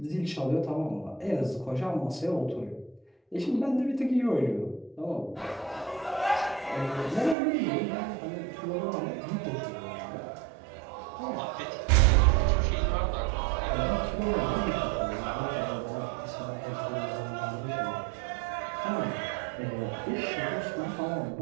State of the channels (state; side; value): drops out; left; at 7.4 s